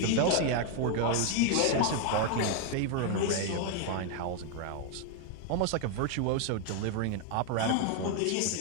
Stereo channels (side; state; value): both; different; correlation 0.01